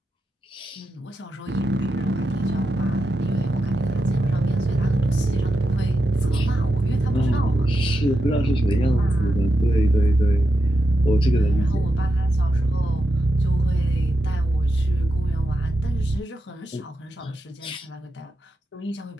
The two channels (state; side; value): normal; both; correlation 0.87